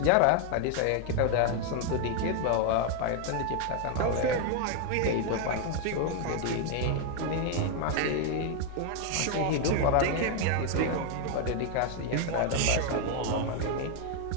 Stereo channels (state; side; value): different; both; correlation 0.01